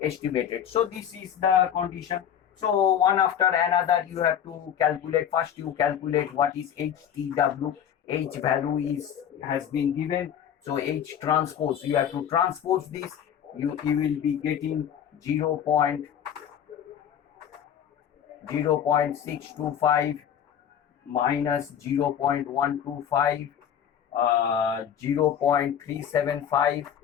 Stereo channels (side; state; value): right; quieter; 9.2 dB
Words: So this is the condition. So one after another you have to calculate. First you calculate what is HTW. H value has been given. So H transpose, you have to transpose this. You will be getting 0.625 minus 0.125, 0.375,